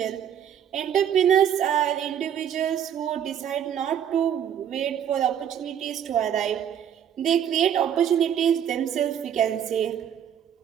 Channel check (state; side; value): quieter; left; 9.2 dB